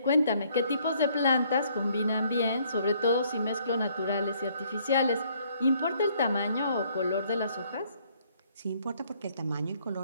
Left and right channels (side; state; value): both; inverted; correlation -0.65